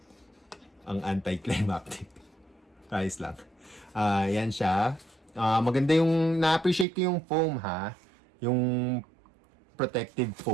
Ang anticlimactic. Ayos lang. Yan siya. Maganda yung, na-appreciate ko yung foam ha. Yung protective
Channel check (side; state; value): left; drops out; at 6.9 s